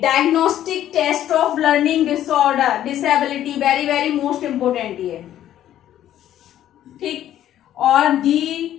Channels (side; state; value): right; quieter; 11.9 dB